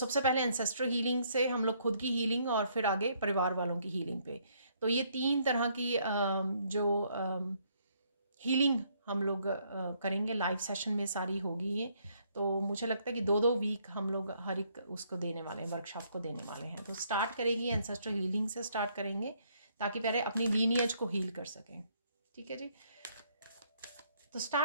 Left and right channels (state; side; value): inverted; both; correlation -0.69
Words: पहले एंसेस्ट्रल हीलिंग से हम लोग खुद की हीलिंग, और फिर आगे परिवार वालों की हीलिंग पे। तो ये 3 तरह की जो हीलिंग हम लोग करेंगे लाइव सेशन में, सारी होगी ये। तो मुझे लगता है कि 2-2 वीक हम लोग हर एक उसको देने वाले हैं, वर्कशॉप को देने वाले हैं। तो स्टार्ट करेगी एंसेस्ट्रल हीलिंग से स्टार्ट करेंगे, ताकि पहले अपनी लीनियज को हील कर सकें। ठीक है जी, तो